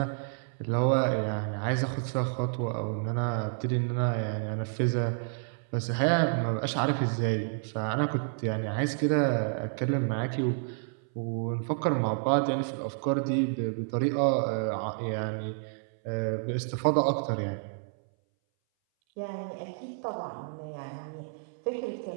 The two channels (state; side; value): silent; left; 58 dB below the other